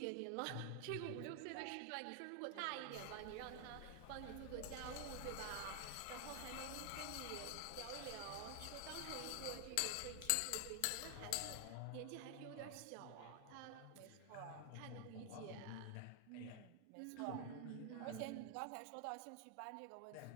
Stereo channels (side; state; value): both; different; correlation 0.00